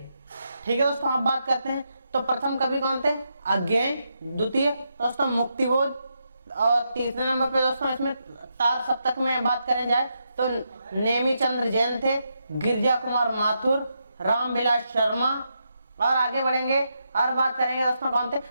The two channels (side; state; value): both; inverted; correlation -0.82